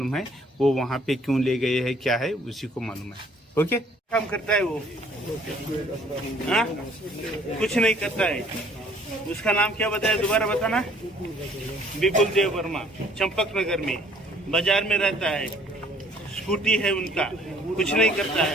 है वो वहाँ पे क्यों ले गए हैं, क्या है उसी को मालूम है। ओके, काम करता है वो? हाँ, कुछ नहीं करता है। उसका नाम क्या बताया, दोबारा बताना? विपुल देव वर्मा, चंपक नगर में बाजार में रहता है, स्कूटी है उनका, कुछ नहीं करता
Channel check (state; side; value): normal; both; correlation 0.58